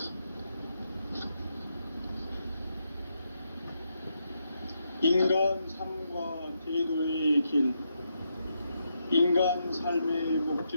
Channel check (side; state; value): both; inverted; correlation -0.81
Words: 인간 삶과 대도의 길. 인간 삶의